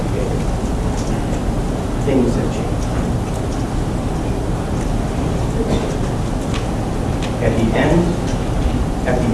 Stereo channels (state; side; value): identical; both; correlation 1.00